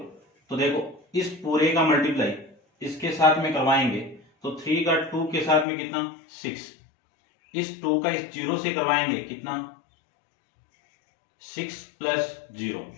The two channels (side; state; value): right; drops out; at 5.7 s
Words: तो देखो इस पूरे का मल्टीप्लाई इसके साथ में करवाएंगे तो 3 का 2 के साथ में कितना 6, इस 2 का इस 0 से करवाएंगे कितना 6 + 0,